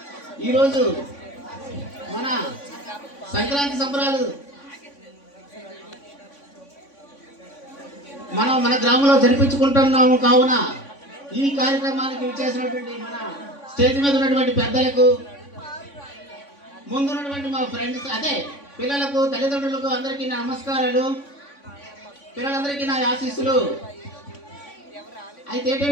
ఈరోజు మన సంక్రాంతి సంబరాలు మనం మన గ్రామంలో జరిపించుకుంటున్నాము. కావున ఈ కార్యక్రమానికి చేసినటువంటి మన స్టేజ్ మీద ఉన్నటువంటి పెద్దలకు, ముందున్నటువంటి మా ఫ్రెండ్స్, అదే పిల్లలకు, తల్లిదండ్రులకు అందరికీ నా నమస్కారాలు. పిల్లలందరికీ నా ఆశీస్సులు. అయితే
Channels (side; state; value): right; late; 3.5 ms